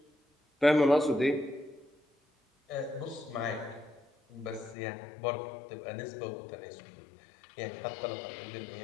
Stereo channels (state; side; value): drops out; right; at 4.8 s